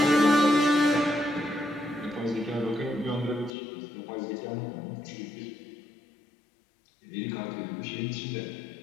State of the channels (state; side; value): drops out; right; at 3.5 s